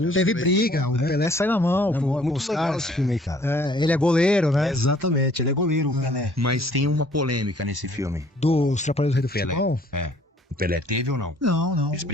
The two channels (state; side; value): normal; both; correlation 0.58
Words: Teve briga, o Pelé sai na mão. Muito legal esse filme aí, cara. Ele é goleiro, né? Exatamente, ele é goleiro, o Pelé. Mas tem uma polêmica nesse filme. Dos Trapalhões do Rei do Pelé. Futebol? O Pelé teve ou não? Não. Eles